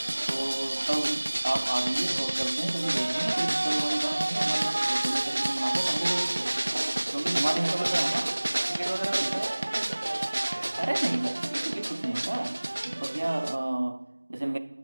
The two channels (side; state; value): both; inverted; correlation -1.00